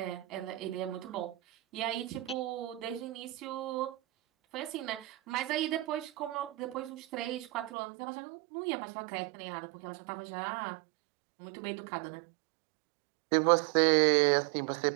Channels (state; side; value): drops out; left; at 7.7 s